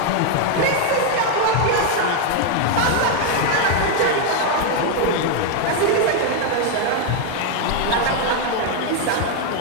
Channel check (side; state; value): both; different; correlation 0.01